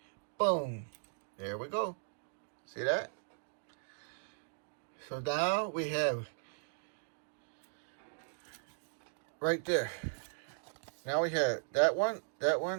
Boom. There we go. See that? So now we have right there. Now we have that one,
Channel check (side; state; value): left; silent; digital silence